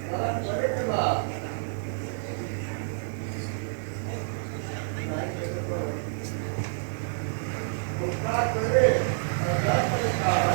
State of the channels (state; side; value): silent; left; digital silence